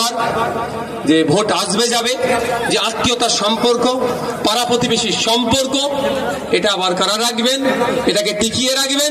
যে ভোট আসবে যাবে, যে আত্মীয়তার সম্পর্ক, পাড়া প্রতিবেশীর সম্পর্ক, এটা বরকরার রাখবেন, এটাকে টিকিয়ে রাখবেন।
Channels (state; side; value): identical; both; correlation 1.00